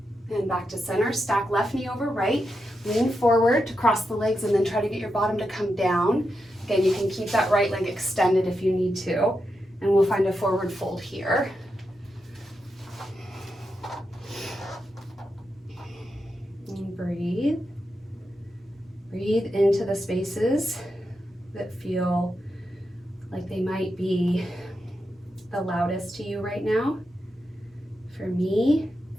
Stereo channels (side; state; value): both; normal; correlation 0.87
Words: And back to center, stack left knee over right, lean forward to cross the legs and then try to get your bottom to come down. Again, you can keep that right leg extended if you need to, and we'll find a forward fold here. And breathe. Breathe into the spaces that feel like they might be the loudest to you right now. For me,